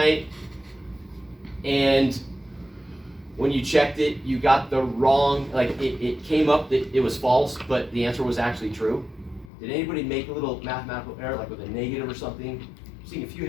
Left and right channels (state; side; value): drops out; right; at 9.5 s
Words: and when you checked it, you got the wrong, like it came up that it was false, but the answer was actually true? Did anybody make a little mathematical error, like with a negative or something? I'm seeing a few